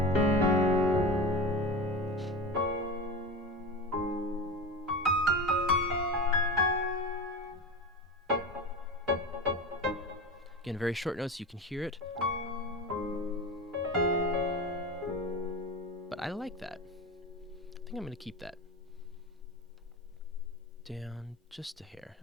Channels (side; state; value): both; normal; correlation 0.26